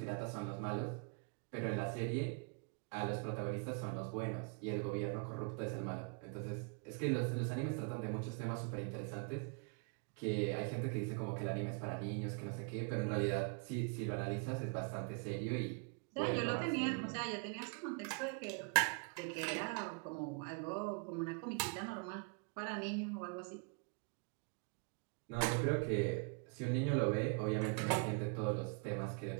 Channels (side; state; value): left; quieter; 35.2 dB